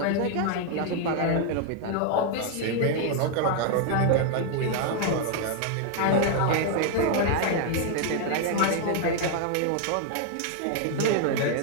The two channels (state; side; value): different; both; correlation 0.00